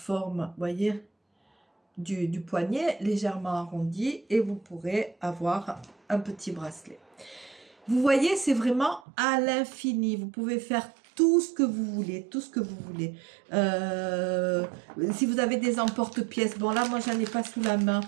voyez, du poignet, légèrement arrondi. Et vous pourrez avoir un petit bracelet. Vous voyez, c'est vraiment à l'infini. Vous pouvez faire tout ce que vous voulez, tout ce que vous voulez. Si vous avez des emporte-pièces, bon là, moi, j'en ai pas sous la main,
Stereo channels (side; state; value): left; drops out; at 9.0 s